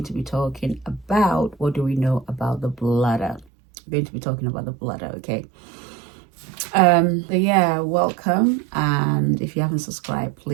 to be talking about what do we know about the bladder. We're going to be talking about the bladder, okay? So yeah, welcome, and if you haven't subscribed,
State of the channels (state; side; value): drops out; left; at 3.5 s